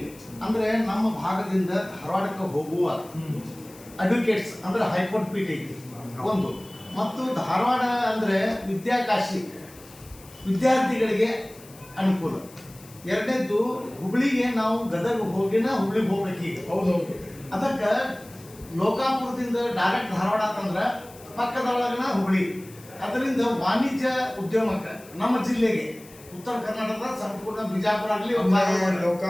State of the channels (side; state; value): left; noise; hiss, 22 dB below the sound